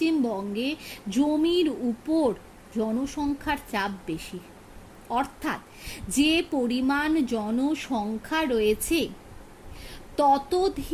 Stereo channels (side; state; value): both; identical; correlation 1.00